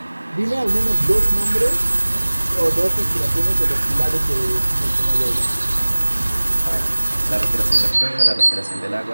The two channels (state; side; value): inverted; both; correlation -1.00